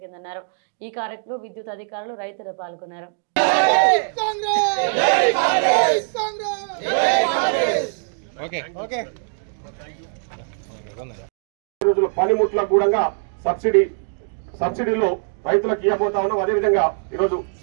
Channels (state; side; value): silent; left; digital silence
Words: ఈ కార్యక్రమంలో విద్యుత్ అధికారులు, రైతులు పాల్గొన్నారు. పనిముట్లకు కూడా సబ్సిడీలో రైతులకు ఇవ్వబోతా ఉన్నాం. అదేవిధంగా ఈరోజు